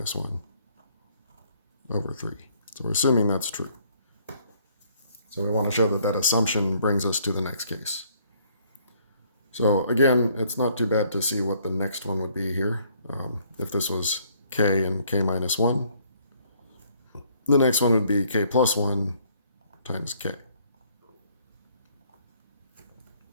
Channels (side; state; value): both; inverted; correlation -0.64